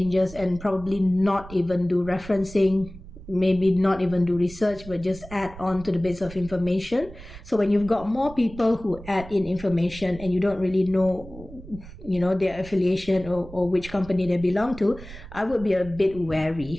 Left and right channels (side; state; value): right; noise; rumble, 16 dB below the sound